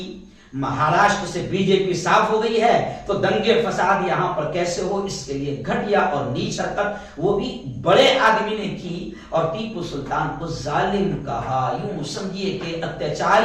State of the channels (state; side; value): identical; both; correlation 1.00